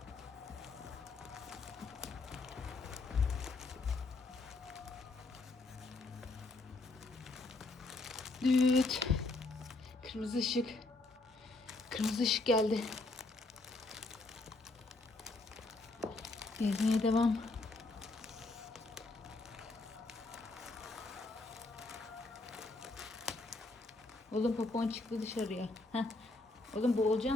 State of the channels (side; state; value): right; quieter; 3.3 dB